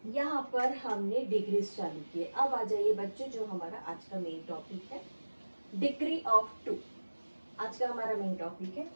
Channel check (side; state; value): both; inverted; correlation -1.00